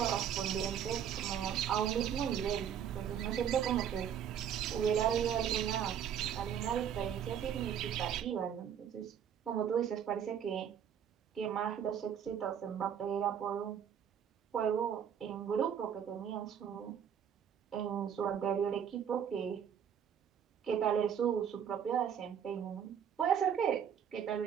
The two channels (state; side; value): quieter; left; 8.6 dB